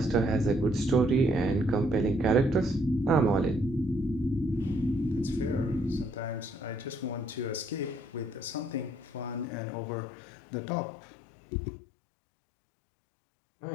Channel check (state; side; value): drops out; right; at 9.5 s